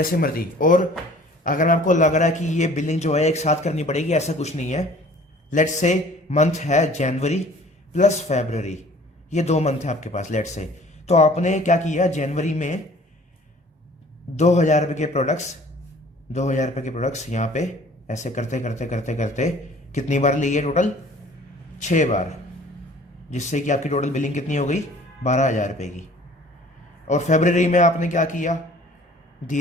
मर्जी। और अगर आपको लग रहा है कि ये बिलिंग जो है एक साथ करनी पड़ेगी, ऐसा कुछ नहीं है। लेट्स से मंथ है जनवरी प्लस फरवरी, ये 2 मंथ है आपके पास लेट्स से। तो आपने क्या किया? जनवरी में 2,000 रुपये के प्रोडक्ट्स, 2,000 रुपये के प्रोडक्ट्स यहाँ पे ऐसे करते करते करते करते कितनी बार लिए? टोटल 6 बार, जिससे कि आपकी टोटल बिलिंग कितनी हो गई? 12,000 रुपये की। और फरवरी में आपने क्या किया?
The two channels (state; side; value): normal; both; correlation 0.51